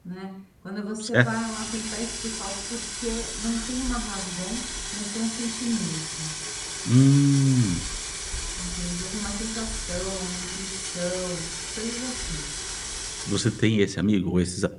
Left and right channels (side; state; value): both; identical; correlation 1.00